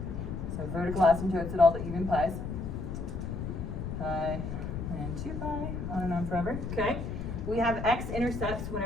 So vertical asymptotes at all the even pi's. Pi and 2 pi, on and on forever. Okay. We have x-intercepts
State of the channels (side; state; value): left; noise; rumble, 5 dB below the sound